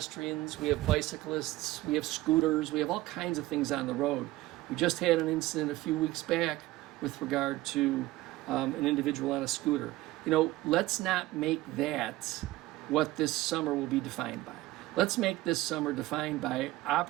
we have bicyclists, we have scooters, we have all kinds of things on the road. We just had an incident a few weeks back with regard to an individual on a scooter. Let's not make that what this summer will be defined by. Let's make this summer defined by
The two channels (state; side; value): quieter; left; 17.6 dB